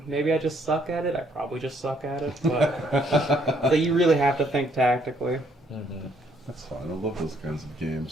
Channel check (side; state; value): both; normal; correlation 0.68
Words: Maybe I just suck at it. I probably just suck at it. But so you really have to think tactically. Mm-hmm. That's fine. I love those kinds of